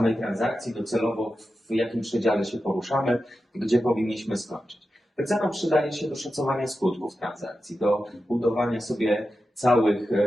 transakcji, docelowo w jakim przedziale się poruszamy, gdzie powinniśmy skończyć. Wycena przydaje się do szacowania skutków transakcji, do budowania sobie całych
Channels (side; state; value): both; normal; correlation 0.91